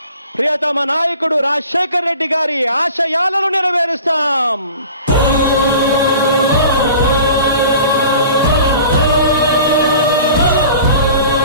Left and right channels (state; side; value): inverted; both; correlation -0.43